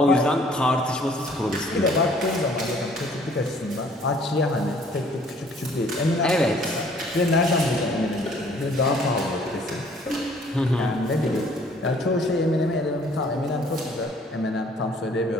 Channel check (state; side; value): normal; both; correlation 0.58